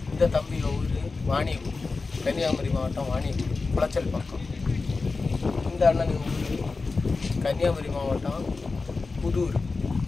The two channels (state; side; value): quieter; right; 4.0 dB